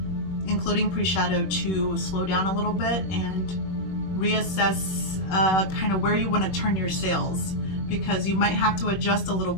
including pre-shadow, to slow down a little bit and reassess kind of where you want to turn your sails, because you might have to adjust a little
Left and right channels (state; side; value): late; right; 21 ms